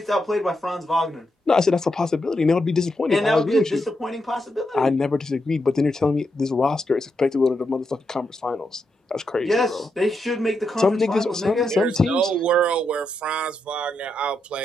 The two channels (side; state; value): both; normal; correlation 0.83